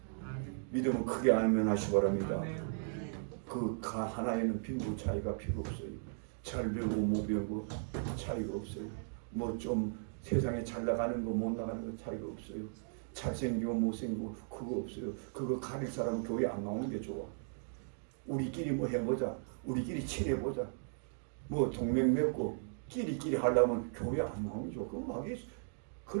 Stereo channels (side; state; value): left; silent; digital silence